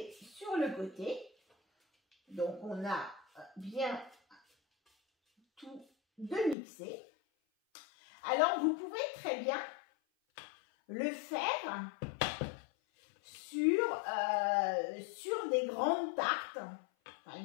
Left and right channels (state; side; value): drops out; right; at 6.6 s